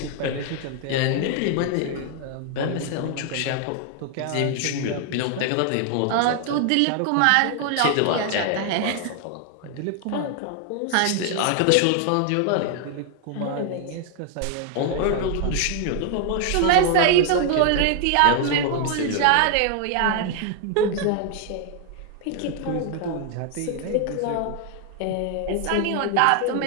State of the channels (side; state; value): both; different; correlation 0.00